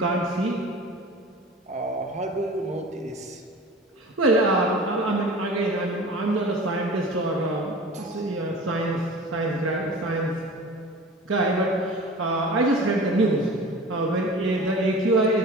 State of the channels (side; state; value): both; normal; correlation 0.39